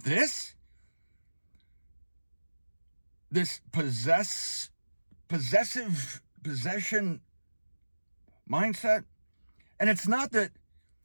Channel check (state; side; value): inverted; both; correlation -1.00